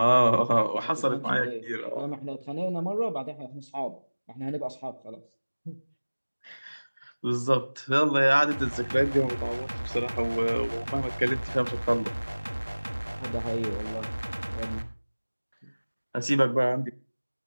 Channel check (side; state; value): both; inverted; correlation -1.00